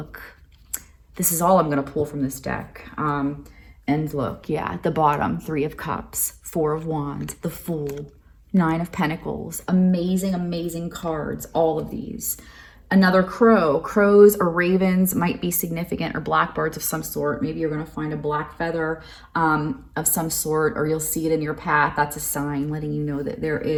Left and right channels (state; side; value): identical; both; correlation 1.00